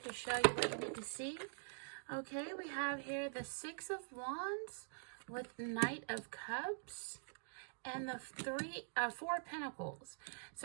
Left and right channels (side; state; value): left; silent; digital silence